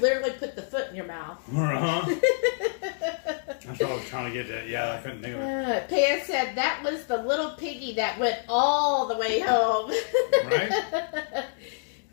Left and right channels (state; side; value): silent; right; digital silence